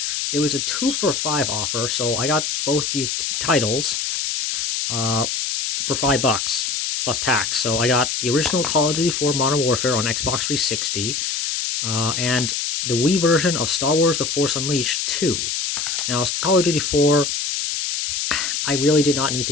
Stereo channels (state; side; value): noise; left; hiss, 1 dB below the sound